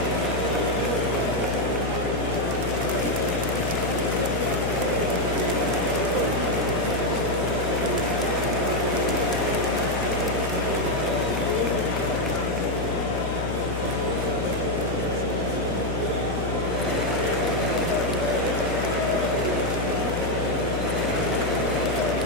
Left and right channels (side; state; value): left; noise; hum, 5 dB below the sound